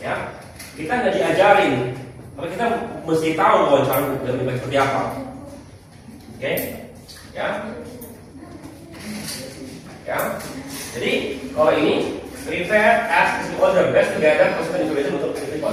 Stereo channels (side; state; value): both; identical; correlation 1.00